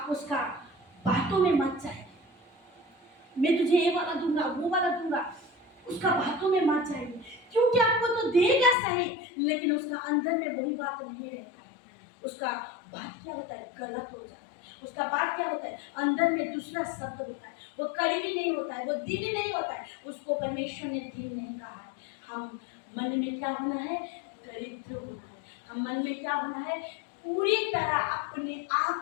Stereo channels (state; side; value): drops out; right; at 8.8 s